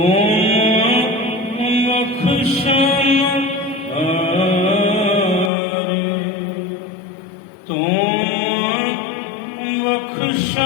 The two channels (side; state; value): right; drops out; at 5.5 s